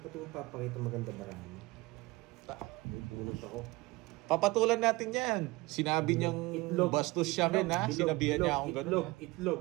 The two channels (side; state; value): left; quieter; 22.2 dB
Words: mong papakita maganda bara mo. May bunot ako. Papatulan natin yan. Sinabi niyang Itlog. bastos siya men ha. Bilog, Sinabihan niya bilog, akong itlog,